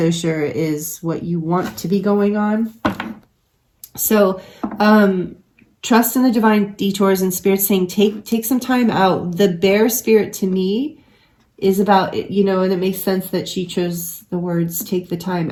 sure is what you want to be going on. So trust in the divine detours, and Spirit saying take some time out. The Bear Spirit to me is about, you know, and it makes sense that she chose the words take the time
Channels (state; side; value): identical; both; correlation 1.00